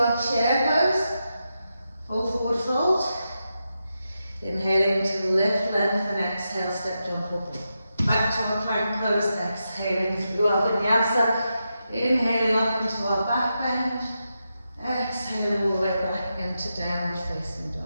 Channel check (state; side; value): inverted; both; correlation -0.87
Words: chair pose. Full forward fold. Inhaling to lift, lengthen, exhale, step, jump up. Back to our plank pose. Exhaling through our vinyasa. Inhaling up into our back bend, exhaling all the way back into downward facing